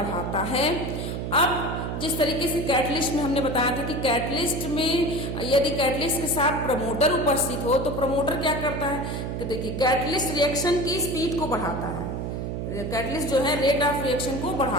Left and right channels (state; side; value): noise; right; hum, 4 dB below the sound